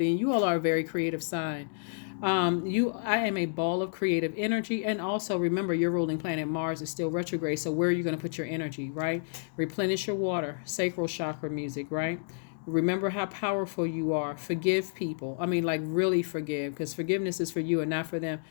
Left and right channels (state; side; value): silent; right; digital silence